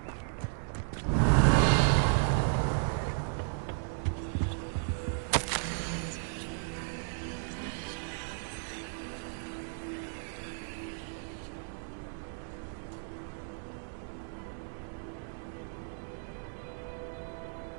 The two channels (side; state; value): left; silent; 55 dB below the other